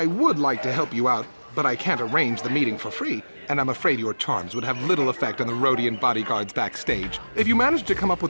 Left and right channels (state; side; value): inverted; both; correlation -1.00